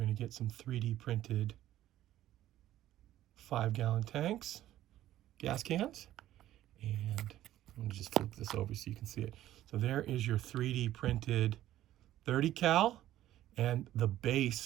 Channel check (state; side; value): quieter; left; 13.5 dB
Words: to get some 3D printed 5-gallon tanks, gas cans. And I'm going to just flip this over so you can see it. So there is your 3D printed 30 cal and the